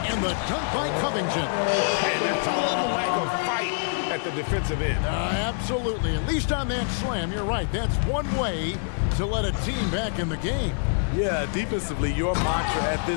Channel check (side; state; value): right; silent; digital silence